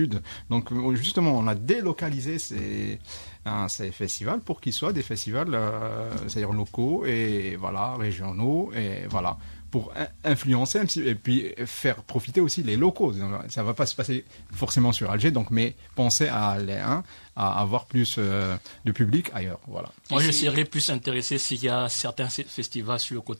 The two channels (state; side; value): inverted; both; correlation -1.00